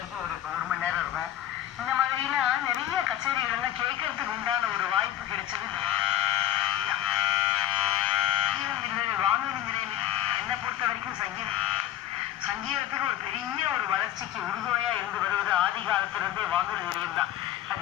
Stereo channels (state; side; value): quieter; right; 12.4 dB